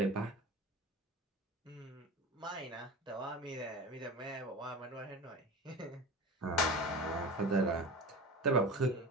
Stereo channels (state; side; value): normal; both; correlation 0.31